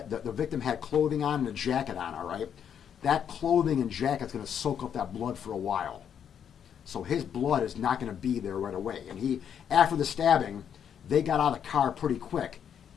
victim had clothing on and a jacket on, all right? That clothing and jacket's going to soak up that blood for a while. So his blood is not going to be there right away. And after the stabbing, they got out of the car pretty quick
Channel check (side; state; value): right; quieter; 8.5 dB